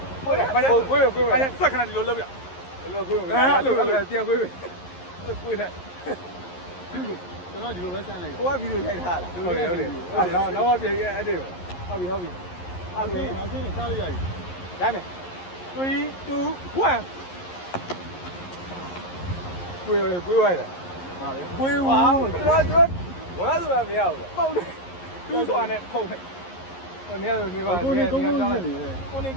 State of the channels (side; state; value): right; late; 11 ms